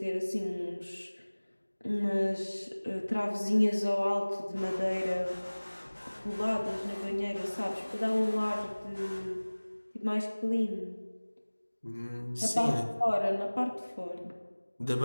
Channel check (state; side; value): inverted; both; correlation -1.00